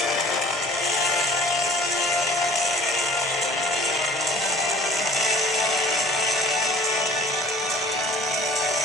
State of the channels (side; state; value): both; normal; correlation 0.51